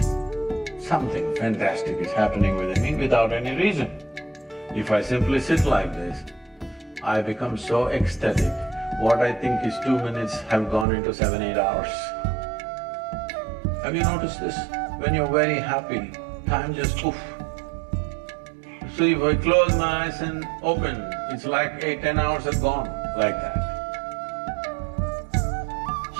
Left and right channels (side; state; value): left; drops out; at 10.9 s